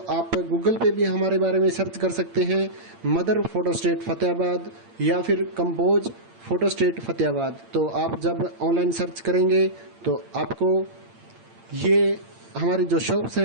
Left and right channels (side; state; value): left; late; 8.8 ms